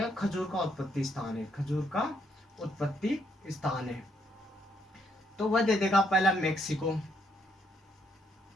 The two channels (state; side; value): normal; both; correlation 0.73